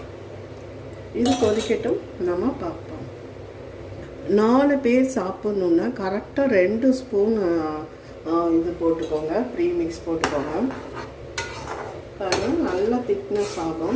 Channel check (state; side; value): identical; both; correlation 1.00